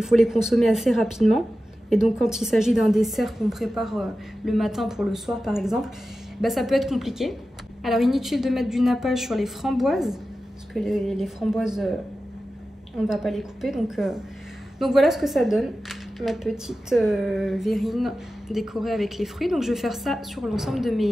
faut les consommer assez rapidement. Et donc quand il s'agit d'un dessert qu'on prépare le matin pour le soir par exemple, ça peut être compliqué. Alors inutile de mettre du nappage sur les framboises, parce que les framboises, on ne va pas les couper. Donc voilà ce que ça donne, ma petite verrine décorée avec les fruits. Donc je vais faire ça sur l'ensemble de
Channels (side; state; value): both; normal; correlation 0.93